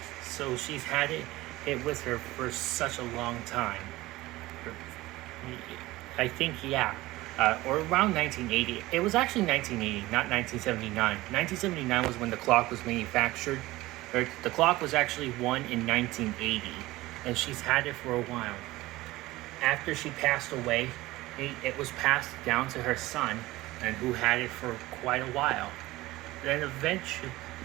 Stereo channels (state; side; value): quieter; left; 18.5 dB